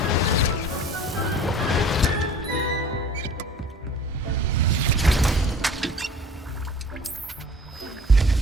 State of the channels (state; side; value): normal; both; correlation 0.46